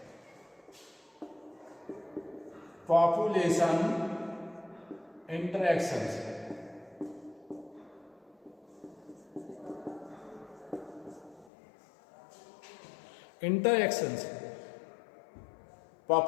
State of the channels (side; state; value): right; drops out; at 11.5 s